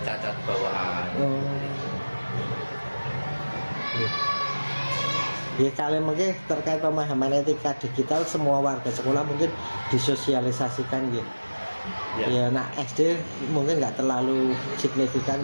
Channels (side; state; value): both; inverted; correlation -1.00